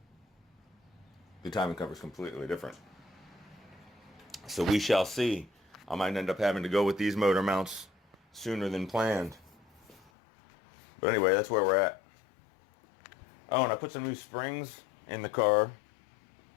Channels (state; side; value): drops out; right; at 10.1 s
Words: the timing cover is completely different. So we shall see. I might end up having to go with these motor mounts sooner than planned. But anyway, that's where we're at. Oh, and I put some new springs in the car